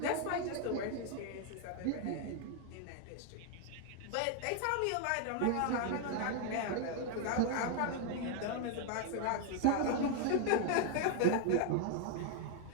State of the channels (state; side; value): different; both; correlation 0.00